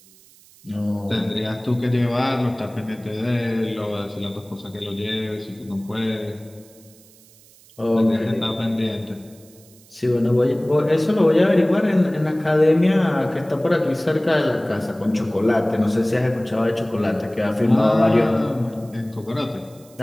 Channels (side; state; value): right; noise; hiss, 26 dB below the sound